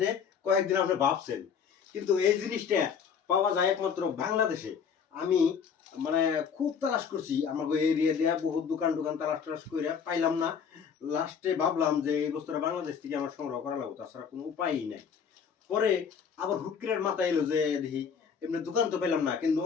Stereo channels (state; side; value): quieter; right; 6.9 dB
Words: কয়েকদিন আপনি ভাবছেন, কিন্তু এই জিনিসটা পাওয়া যায় একমাত্র বাংলাদেশে। আমি মানে খুব তালাশ করছি আমাকে এরিয়া দিয়ে, বহুত দোকান তালাশ করে পাইলাম না। লাস্টে ভাবলাম যে এই বস্তুটা বাংলাদেশ থেকে আমার সংগ্রহ করা লাগবে, তাছাড়া কোনো উপায়ই নাই। পরে আবার হুট করে মাথায় এলো যে দেখি এমনি দোকান তো পেলাম না, কিন্তু